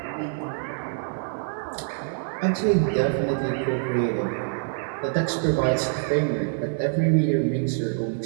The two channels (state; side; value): silent; left; 58 dB below the other